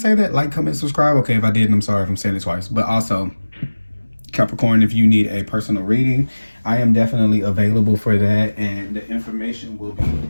that? Like, comment, subscribe. Okay, if I didn't, I'm sorry if I'm saying it twice. But also, Capricorn, if you need a personal reading, I am definitely available for that, and the information will be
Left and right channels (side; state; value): both; inverted; correlation -1.00